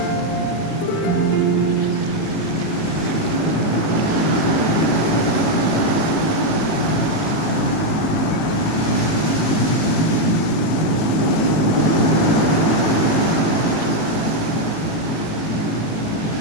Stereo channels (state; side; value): late; right; 18 ms